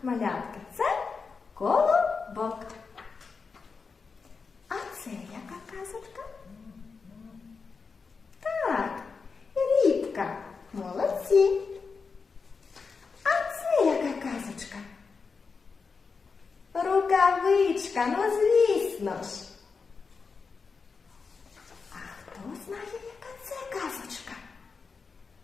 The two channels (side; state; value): right; quieter; 5.0 dB